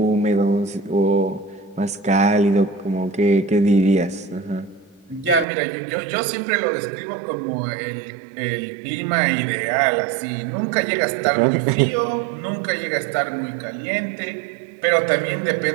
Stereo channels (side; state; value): left; drops out; at 5.5 s